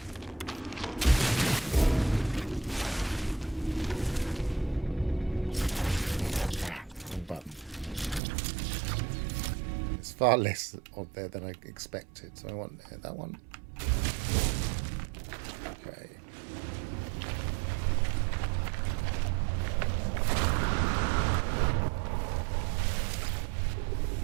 Wrong button. It's far less on there than I expected, so I want that one. Okay.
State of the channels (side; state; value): left; drops out; at 8.2 s